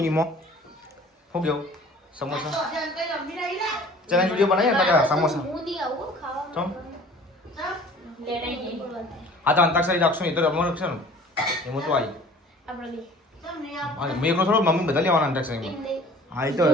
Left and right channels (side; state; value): both; normal; correlation 0.48